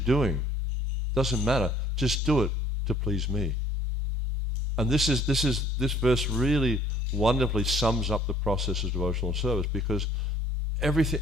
doesn't matter. Just do it to please me. And this verse really wonderfully sums up the process of devotional service, because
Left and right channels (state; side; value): normal; both; correlation 0.56